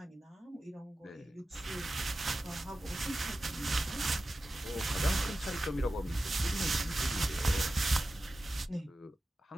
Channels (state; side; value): normal; both; correlation 0.94